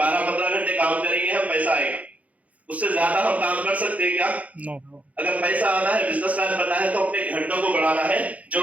घंटे काम करेंगे हम, पैसा आएगा। उससे ज्यादा हम काम कर सकते हैं क्या? नो। अगर पैसा आना है, बिजनेसमैन बनना है, तो अपने घंटों को बढ़ाना है,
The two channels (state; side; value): late; left; 0.069 ms